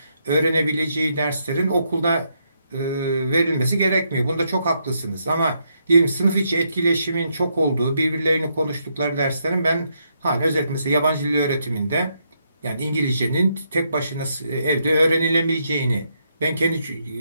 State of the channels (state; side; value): inverted; both; correlation -0.77